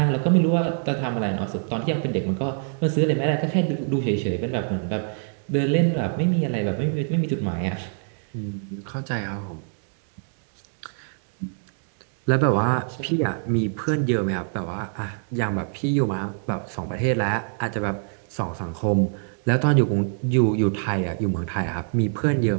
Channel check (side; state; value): left; silent; digital silence